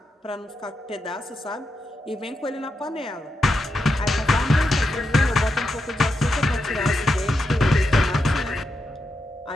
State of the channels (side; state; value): both; normal; correlation 0.86